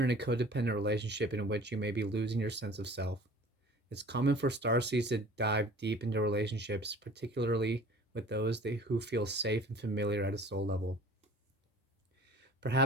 in a codependent relationship in which you may be losing your sense of self. It's common for starseeds to dive deep into relationships, particularly with those who feel safe and familiar at a soul level.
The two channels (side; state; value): both; normal; correlation 0.47